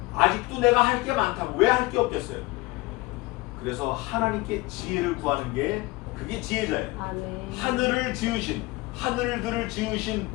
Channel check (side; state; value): right; quieter; 22.3 dB